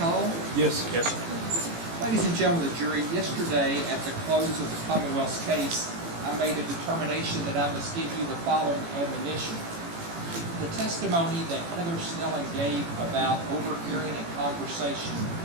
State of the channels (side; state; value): left; late; 18 ms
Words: Yes. Yes. Ladies and gentlemen of the jury, yesterday at the close of the Commonwealth's case, I made a determination that I must give you the following admonition. The testimony that Heather Snelling gave about overhearing a conversation